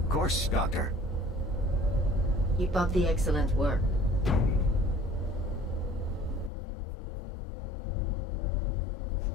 course, Doctor. Keep up the excellent work.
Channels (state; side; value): drops out; right; at 6.5 s